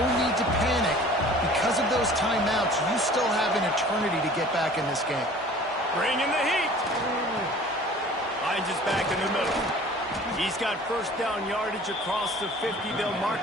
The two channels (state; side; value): normal; both; correlation 0.47